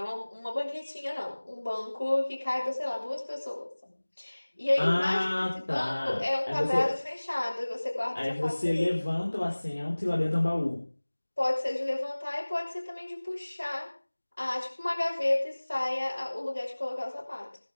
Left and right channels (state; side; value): inverted; both; correlation -1.00